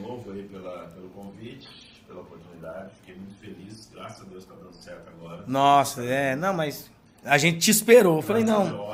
aí pelo convite, pela oportunidade. Fiquei muito feliz. Graças a Deus está dando certo agora. Nossa, não, mas a gente te esperou. Eu falei,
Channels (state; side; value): identical; both; correlation 1.00